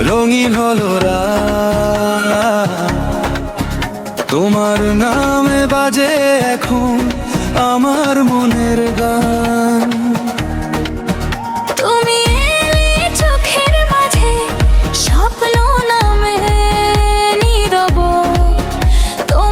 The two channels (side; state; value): both; identical; correlation 1.00